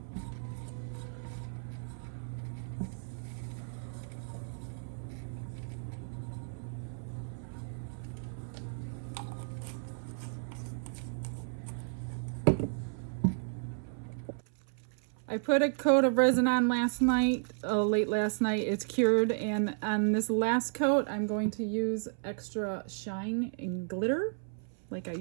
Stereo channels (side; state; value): left; silent; 56 dB below the other